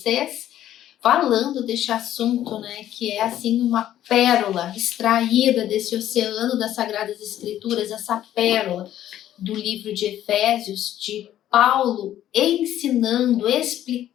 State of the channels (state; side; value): quieter; right; 12.1 dB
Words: falando deste assunto, né, que é assim uma pérola extraída desse oceano das Sagradas Escrituras, essa pérola do livro de Efésios, de Paulo ensinando,